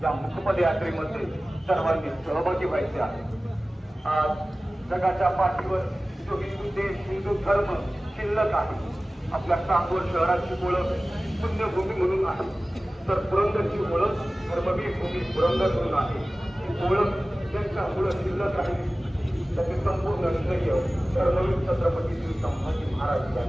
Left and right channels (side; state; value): both; normal; correlation 0.97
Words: या मुकपद यात्रेमध्ये सर्वांनी सहभागी व्हायचे आहे. आज जगाच्या पाठीवर जो हिंदू देश, हिंदू धर्म शिल्लक आहे, आपल्या सांगोल शहराची ओळख पुण्यभूमी म्हणून आहे, तर पुरंदरची ओळख धर्मवीर भूमी पुरंदर म्हणून आहे. ही ओळख ज्यांच्यामुळे शिल्लक राहिली त्याचे संपूर्ण श्रेय धर्मवीर छत्रपती श्री संभाजी महाराज